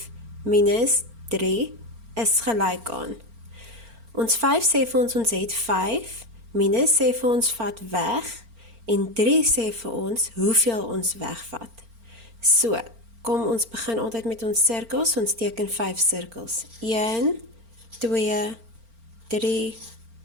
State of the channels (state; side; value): late; left; 4.4 ms